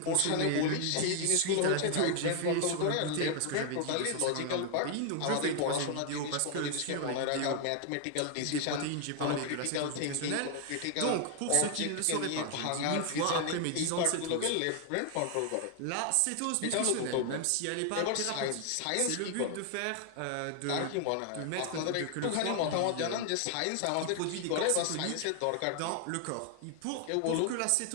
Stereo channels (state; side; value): different; both; correlation 0.00